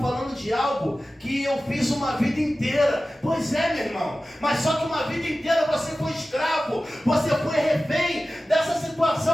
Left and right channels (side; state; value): both; normal; correlation 0.95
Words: de algo que eu fiz uma vida inteira. Pois é, meu irmão, mas só que uma vida inteira você foi escravo, você foi refém dessa